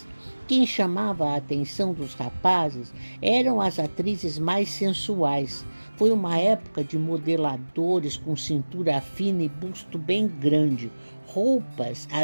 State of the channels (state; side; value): inverted; both; correlation -1.00